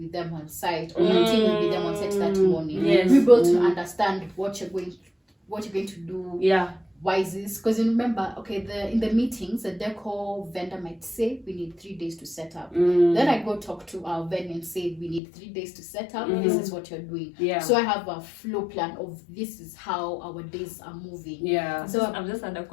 them on site, or my team will be them on site that morning. We're able to understand what you're going to do. Why is this? Because you remember, in the meetings, the decor vendor might say we need 3 days to set up. Then I go talk to our venue and say we need 3 days to set up. This is what you're doing. So I have a flow plan of this is how our days are moving. So I've just had a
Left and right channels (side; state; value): right; drops out; at 15.2 s